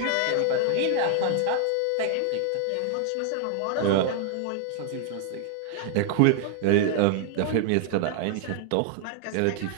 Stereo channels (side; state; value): both; different; correlation 0.00